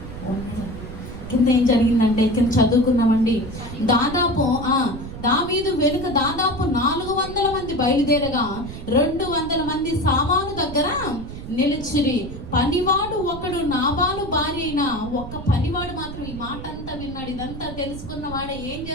కింద ఏం జరిగిందంటే కింద చదువుకున్నామండి. దావీదు వెనుక దాదాపు 400 మంది బయలుదేరగా 200 మంది సామాను దగ్గర నిలిచిరి. పనివాడు ఒకడు నాబాలు భార్య అయిన ఒక్క పనివాడు మాత్రం ఈ మాట అంతా విన్నాడు. ఇదంతా తెలుసుకున్న వాడే ఏం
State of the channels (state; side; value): noise; right; rumble, 10 dB below the sound